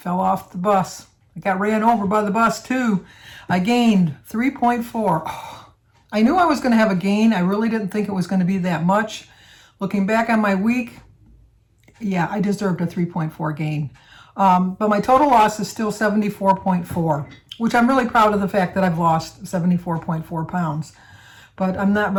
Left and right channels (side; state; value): both; identical; correlation 1.00